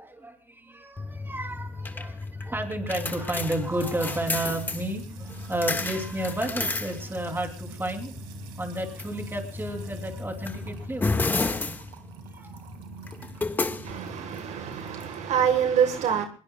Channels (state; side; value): normal; both; correlation 0.53